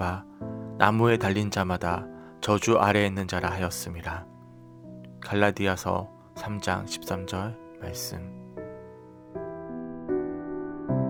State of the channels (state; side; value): identical; both; correlation 1.00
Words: 나무에 달린 자마다 저주 아래에 있는 자라 하였음이라. 갈라디아서 3장 13절 말씀.